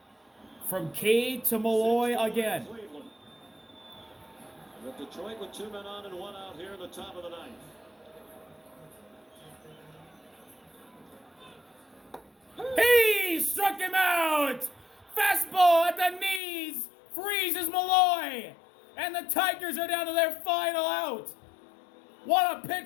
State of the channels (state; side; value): drops out; right; at 16.4 s